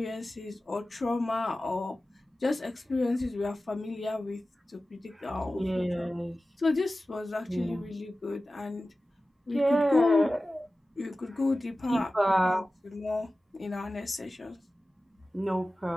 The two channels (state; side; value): normal; both; correlation 0.95